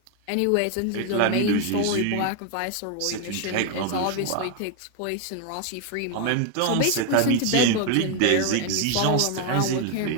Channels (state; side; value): different; both; correlation 0.01